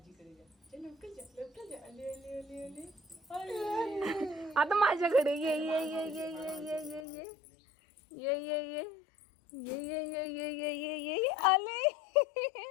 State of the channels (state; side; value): drops out; right; at 7.1 s